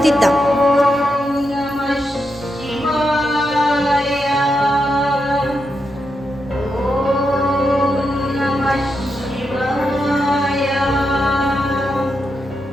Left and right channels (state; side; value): normal; both; correlation 0.85